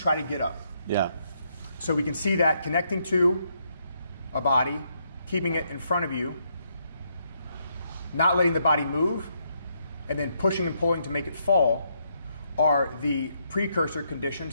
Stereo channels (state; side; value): inverted; both; correlation -0.76